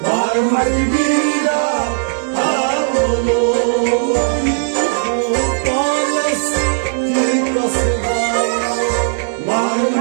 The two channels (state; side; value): silent; left; digital silence